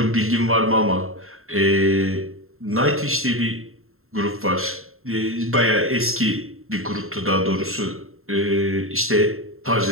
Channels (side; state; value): left; late; 0.62 ms